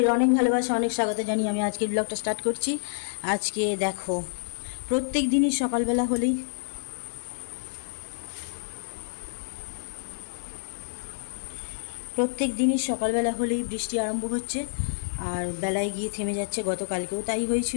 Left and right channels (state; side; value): silent; right; digital silence